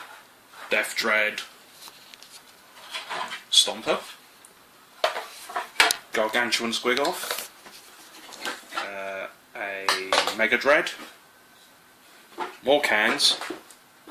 Death Dread, Stomper, Gargantuan Squigoth, a Mega Dread, more cans,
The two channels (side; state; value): both; identical; correlation 1.00